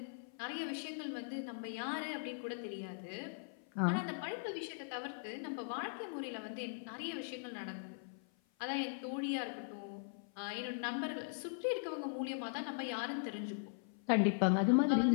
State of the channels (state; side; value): silent; right; 51 dB below the other